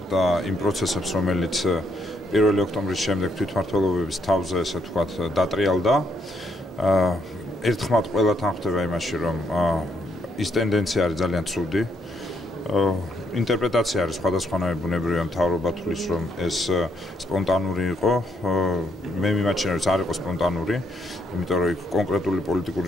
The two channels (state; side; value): normal; both; correlation 0.74